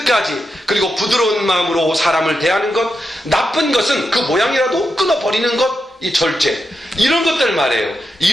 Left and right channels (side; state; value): both; normal; correlation 0.87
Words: 그리고 부드러운 마음으로 사람을 대하는 것, 나쁜 것은 그 모양이라도 끊어버리는 것, 이 절제, 이런 것들 말이에요.